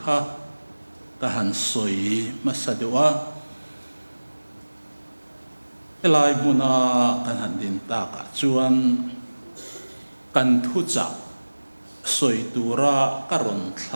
ka han soi mà sa doa elai muna kan han din ta ka chuan kan thu cha soi tura karon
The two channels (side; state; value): both; inverted; correlation -1.00